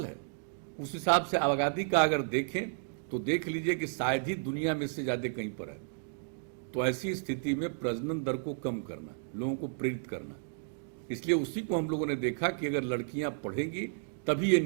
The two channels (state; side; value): silent; left; digital silence